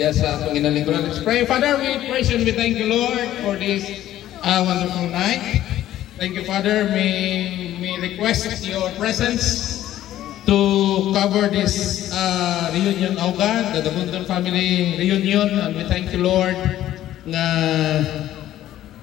sa itong inalingkuran. Let's pray. Father, we praise you and we thank you, Lord, for this wonderful night. Thank you, Father. May request your presence to cover this reunion, oh God, the Dabunton family reunion, and we thank you, Lord, na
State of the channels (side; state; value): right; quieter; 13.0 dB